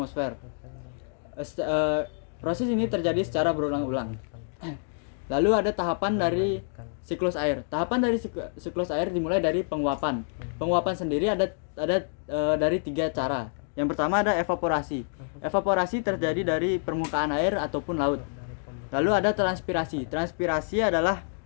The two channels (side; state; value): right; silent; digital silence